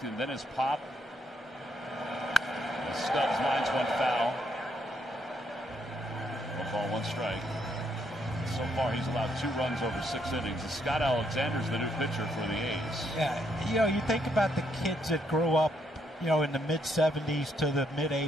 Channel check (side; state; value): both; normal; correlation 0.74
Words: and then his pop. Stubbs lines 1 foul. 1 ball, 1 strike. So far, he's allowed 2 runs over 6 innings. And Scott Alexander's the new pitcher for the A's. Yeah, you think about the kids that grew up, in the mid-'70s to the